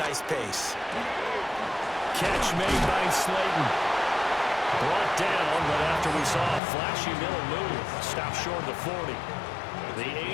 pace. Catch made by Slayton. Brought down, but after we saw a flashy middle move, stopped short of the 40. The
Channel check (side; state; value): right; drops out; at 6.6 s